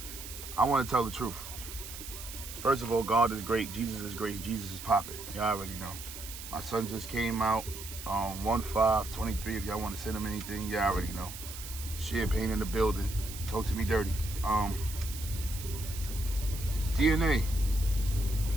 I want to tell the truth. First of all, God is great. Jesus is great. Jesus is popping. Y'all already know. My son just came out on 1/5/23. If y'all want to send him anything, y'all already know. Champagne in the building. Talk to me dirty. DNA.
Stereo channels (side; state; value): right; noise; hiss, 11 dB below the sound